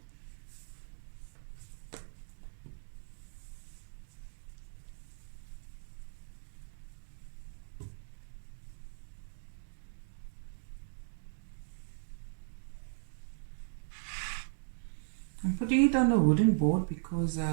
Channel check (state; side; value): silent; left; digital silence